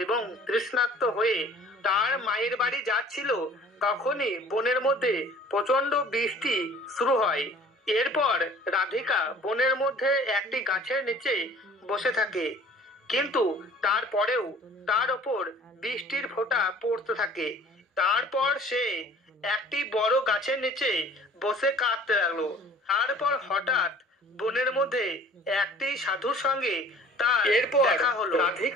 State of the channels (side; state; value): both; normal; correlation 0.50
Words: এবং তৃষ্ণার্ত হয়ে তার মায়ের বাড়ি যাচ্ছিল তখনই বনের মধ্যে প্রচন্ড বৃষ্টি শুরু হয়। এরপর রাধিকা বনের মধ্যে একটি গাছের নিচে বসে থাকে, কিন্তু তারপরেও তার ওপর বৃষ্টির ফোঁটা পড়তে থাকে। তারপর সে একটি বড় গাছের নিচে বসে কাঁদতে লাগলো। তারপর হঠাৎ বনের মধ্যে একটি সাধুর সঙ্গে তার দেখা হলো।